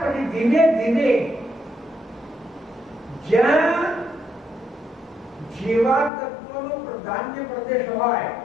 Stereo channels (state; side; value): drops out; right; at 6.1 s